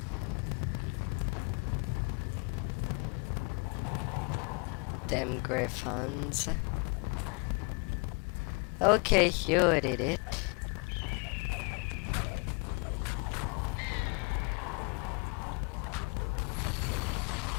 Them griffons. Okay, you did it.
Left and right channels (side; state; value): right; quieter; 32.3 dB